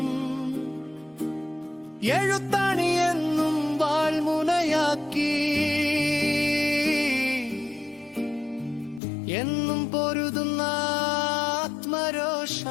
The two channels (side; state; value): right; drops out; at 9.0 s